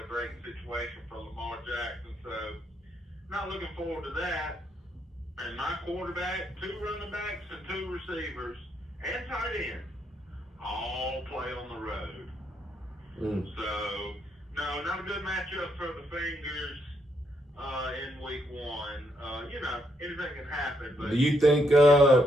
great situation for Lamar Jackson. So, not looking forward to that. And my quarterback, 2 running backs, and 2 receivers, and tight end, all play on the road. So, no, not a good matchup for the Fingers in week 1. Anything can happen, but Do you think? kind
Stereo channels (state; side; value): normal; both; correlation 0.75